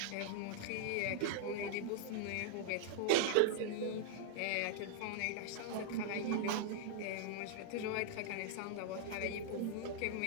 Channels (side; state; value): both; different; correlation -0.01